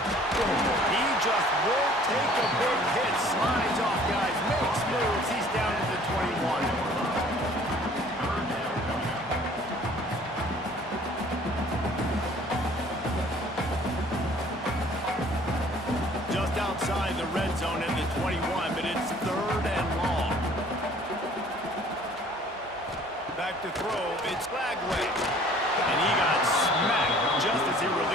He just won't take a big hit. Slides off, guys. Makes moves. He's down to the 21. Just outside the red zone in the 21, but it's 3rd and long. Back to throw. It's Flagway. And he got smacked just as he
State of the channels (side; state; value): both; normal; correlation 0.53